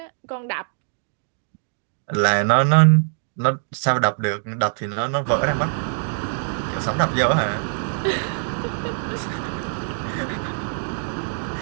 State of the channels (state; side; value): silent; left; digital silence